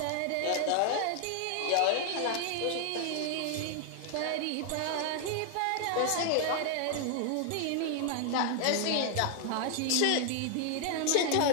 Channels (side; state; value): both; different; correlation 0.00